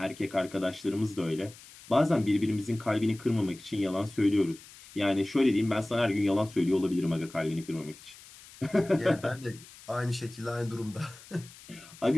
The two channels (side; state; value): left; noise; hiss, 20 dB below the sound